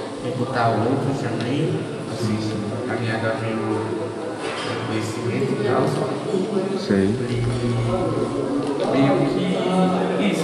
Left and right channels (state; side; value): identical; both; correlation 1.00